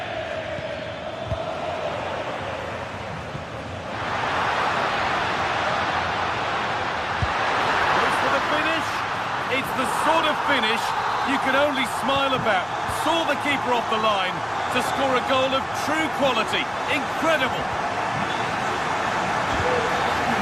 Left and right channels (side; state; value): both; identical; correlation 1.00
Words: It's the sort of finish you can only smile about. Saw the keeper off the line to score a goal of true quality. Incredible.